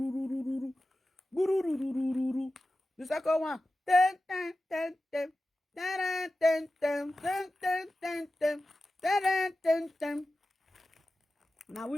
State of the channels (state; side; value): normal; both; correlation 0.94